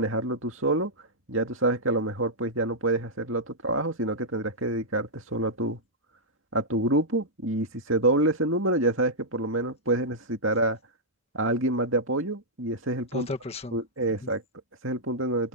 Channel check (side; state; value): both; normal; correlation -0.10